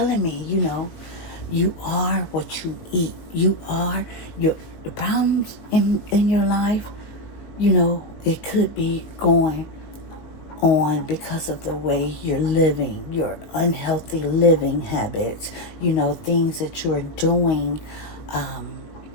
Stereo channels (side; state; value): right; late; 19 ms